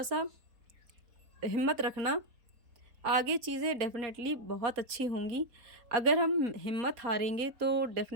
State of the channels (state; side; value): late; left; 4.2 ms